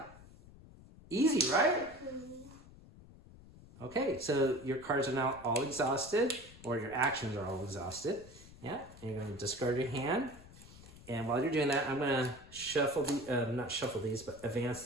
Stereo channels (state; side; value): noise; left; rumble, 20 dB below the sound